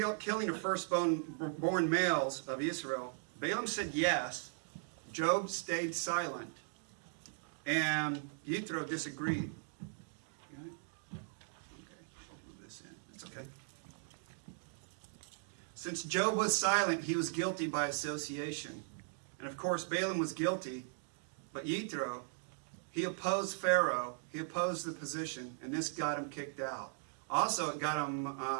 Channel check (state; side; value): silent; left; digital silence